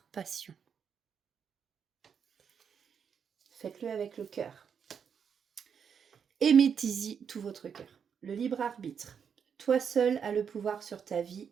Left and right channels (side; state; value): left; quieter; 7.1 dB